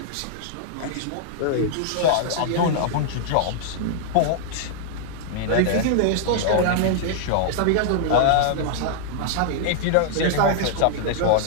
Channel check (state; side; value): different; both; correlation -0.01